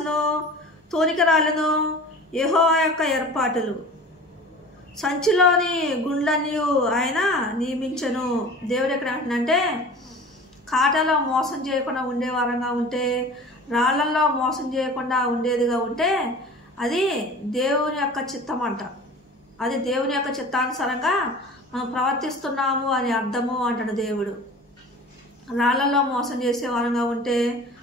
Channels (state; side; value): normal; both; correlation 0.40